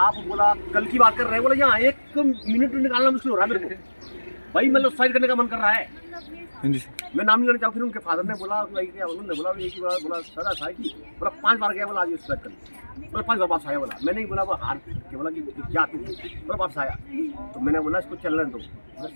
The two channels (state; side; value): inverted; both; correlation -1.00